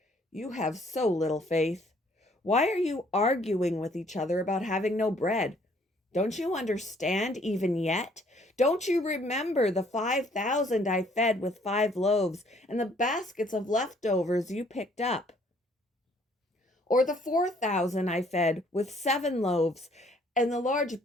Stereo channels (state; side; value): normal; both; correlation 0.62